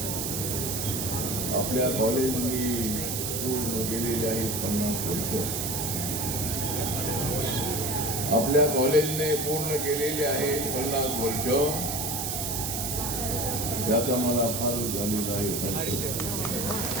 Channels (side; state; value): right; noise; hiss, 2 dB below the sound